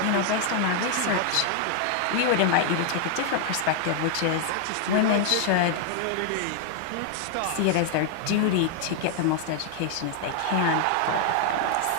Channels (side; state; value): both; different; correlation 0.00